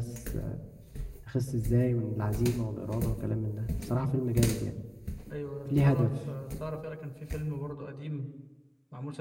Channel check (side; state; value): both; identical; correlation 1.00